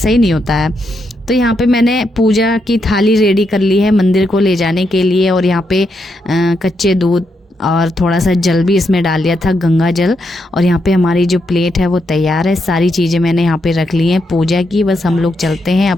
नहीं होता है। तो यहाँ पे मैंने पूजा की थाली रेडी कर ली है मंदिर को ले जाने के लिए, और यहाँ पे कच्चे दूध और थोड़ा सा जल भी इसमें डाल लिया था, गंगा जल। और यहाँ पे हमारी जो प्लेट है वो तैयार है, सारी चीज़ें मैंने यहाँ पे रख ली हैं पूजा की। बस हम लोग चलते हैं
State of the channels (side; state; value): both; normal; correlation 0.81